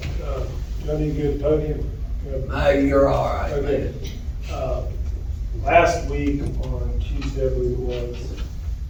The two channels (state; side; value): identical; both; correlation 1.00